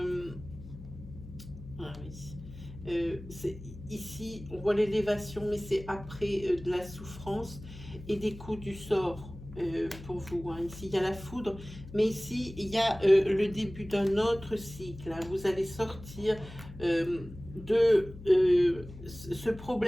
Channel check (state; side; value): noise; left; hum, 15 dB below the sound